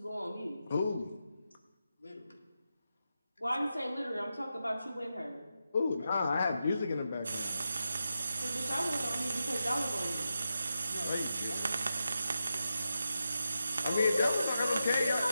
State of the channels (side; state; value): both; inverted; correlation -0.88